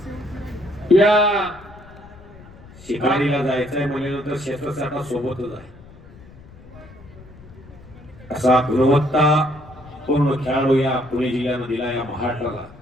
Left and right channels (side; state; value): left; noise; rumble, 21 dB below the sound